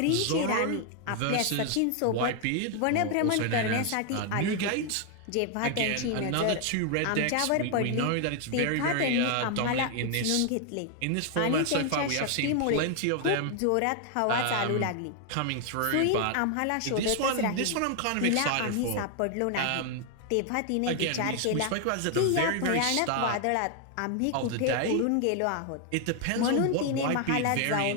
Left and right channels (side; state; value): both; different; correlation 0.00